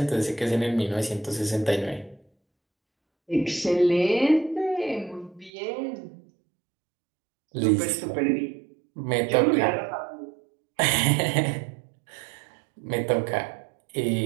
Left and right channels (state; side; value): drops out; left; at 5.5 s